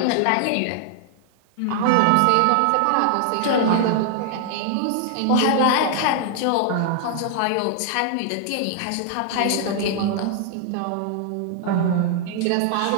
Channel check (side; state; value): both; different; correlation 0.00